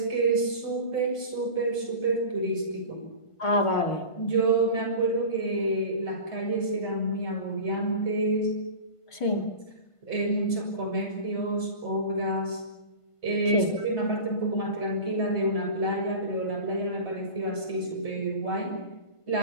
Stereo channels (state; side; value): late; right; 1.5 ms